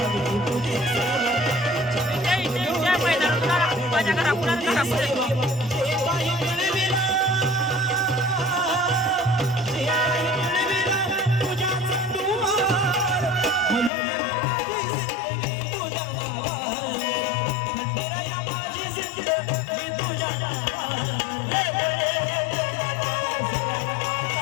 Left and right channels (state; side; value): drops out; right; at 13.9 s